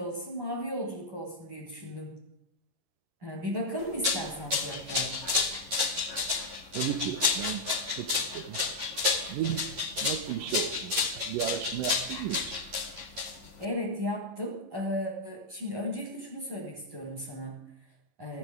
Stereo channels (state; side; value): late; left; 11 ms